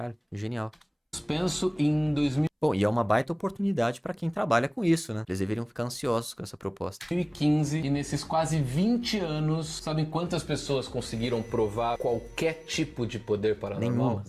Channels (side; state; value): both; identical; correlation 1.00